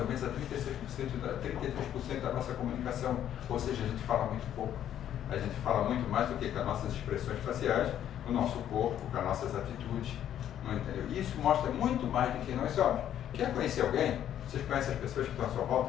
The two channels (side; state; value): right; quieter; 10.7 dB